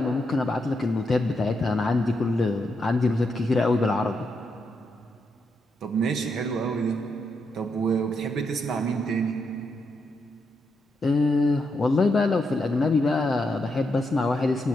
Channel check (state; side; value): normal; both; correlation 0.81